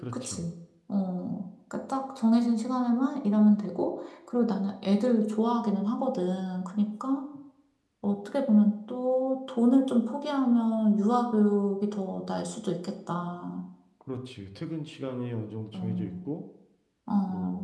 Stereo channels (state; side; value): identical; both; correlation 1.00